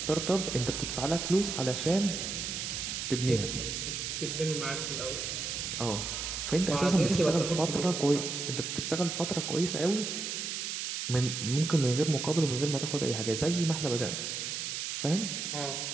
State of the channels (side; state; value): right; noise; hiss, 3 dB below the sound